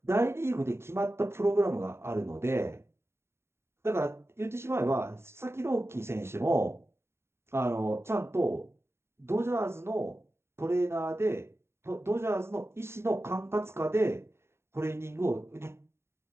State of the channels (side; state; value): left; late; 0.12 ms